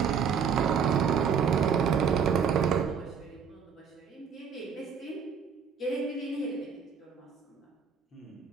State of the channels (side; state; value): left; quieter; 6.7 dB